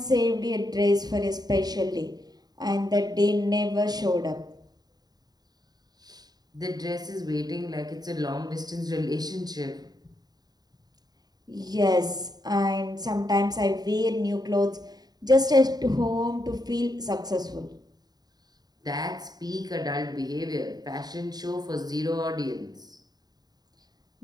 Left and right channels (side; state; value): left; late; 0.19 ms